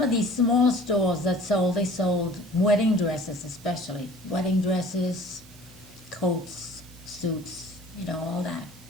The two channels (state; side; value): noise; right; hiss, 24 dB below the sound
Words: of these small stores that they sold wedding dresses especially. Wedding dresses, coats, suits, all that.